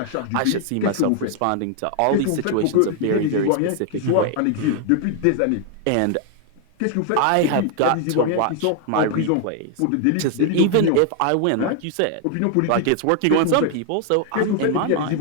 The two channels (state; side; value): different; both; correlation 0.00